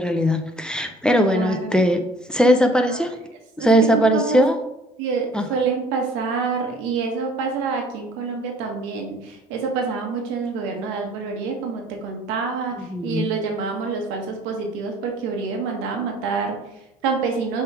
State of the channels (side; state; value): both; normal; correlation 0.54